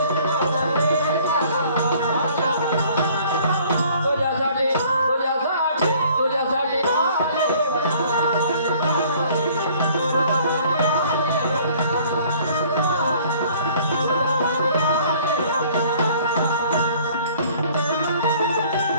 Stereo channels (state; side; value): inverted; both; correlation -0.55